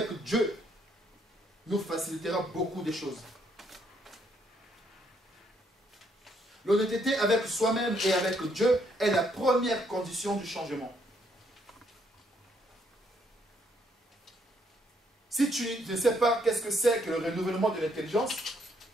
Dieu, nous facilitera beaucoup de choses. L'honnêteté avec soi-même et avec Dieu est la première condition du changement. Si tu ne sais pas qu'est-ce que c'est que le renouvellement de l'intelligence,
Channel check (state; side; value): normal; both; correlation 0.71